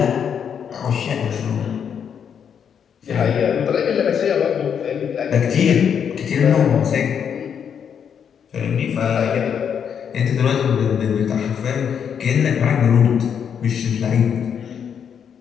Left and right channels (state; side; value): quieter; right; 7.8 dB